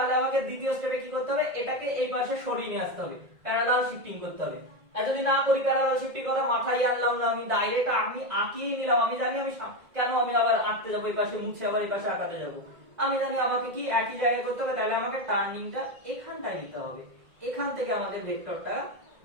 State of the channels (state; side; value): late; left; 1.9 ms